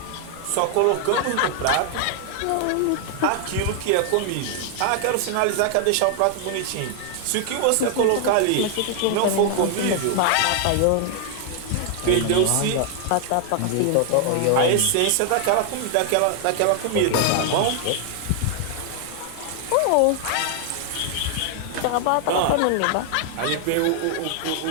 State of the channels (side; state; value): both; different; correlation 0.00